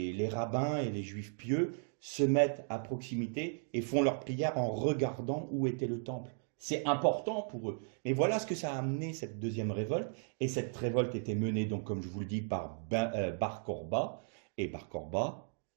rabbins et les Juifs pieux se mettent à proximité et font leur prière en regardant où était le temple. C'est important pour eux. Mais voilà ce que ça a amené, cette deuxième révolte. Et cette révolte était menée, donc, comme je vous le dis, par Bar Kourba. Et Bar Kourba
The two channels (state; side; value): silent; left; digital silence